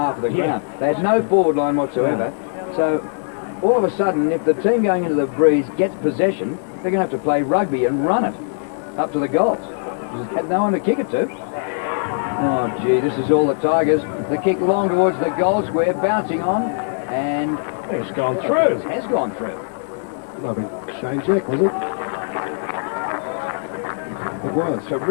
of the ground. They had no forward line whatsoever. So all of a sudden, if the team going into the breeze gets possession, they're going to have to play rugby and run it up to the goals. They had no one to kick it to. Oh, gee, this is all the Tigers. The kick long towards the goal square, bouncing on, and it's gone through. It has gone through. Lovely Shane Jack, was it? It was.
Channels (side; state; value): right; silent; digital silence